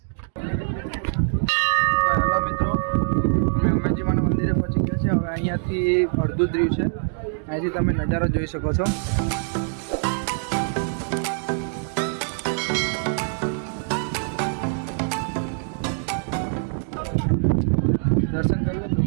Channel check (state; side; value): silent; left; digital silence